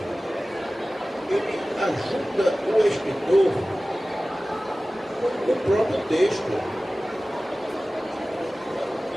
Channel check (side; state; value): both; normal; correlation 0.97